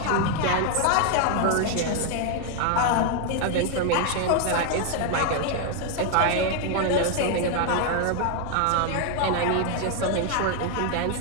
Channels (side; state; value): both; different; correlation 0.00